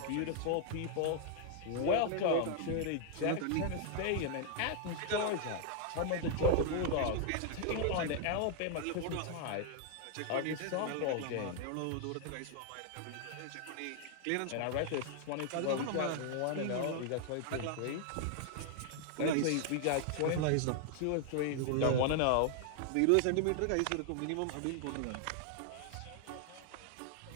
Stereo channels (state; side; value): different; both; correlation 0.00